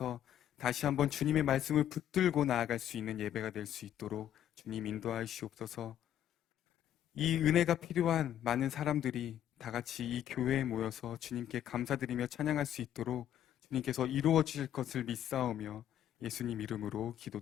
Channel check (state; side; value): quieter; right; 10.9 dB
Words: 다시 한번 주님의 말씀을 붙들고 나아갈 수 있는 예배가 될 수 있도록 주님 인도하여 주옵소서. 이 은혜가 필요한 많은 사람들이 다 같이 이 교회에 모여서 주님께 감사드리며 찬양할 수 있도록 주님께서 이루어 주실 것을 믿사오며 예수님 이름으로